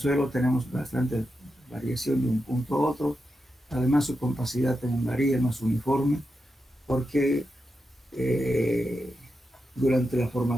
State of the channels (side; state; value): both; normal; correlation 0.88